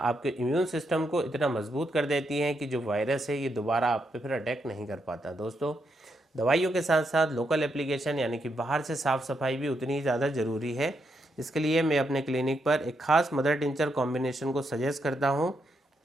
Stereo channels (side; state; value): both; normal; correlation 0.80